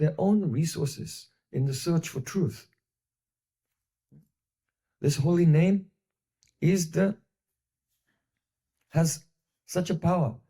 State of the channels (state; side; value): identical; both; correlation 1.00